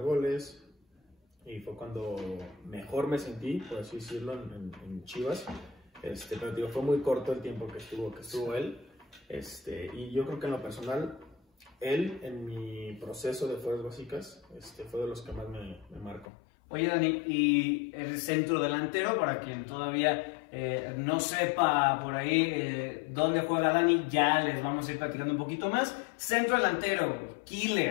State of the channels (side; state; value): right; drops out; at 16.2 s